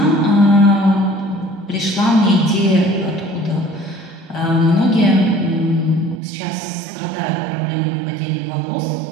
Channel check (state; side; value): drops out; left; at 6.2 s